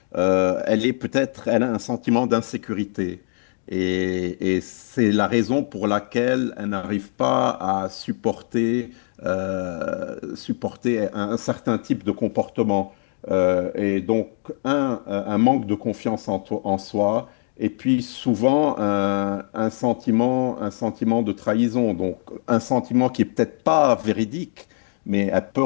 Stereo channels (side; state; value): right; silent; 64 dB below the other